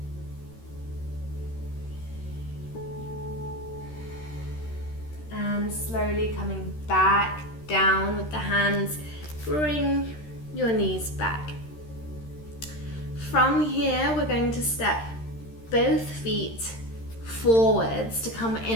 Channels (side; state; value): right; late; 13 ms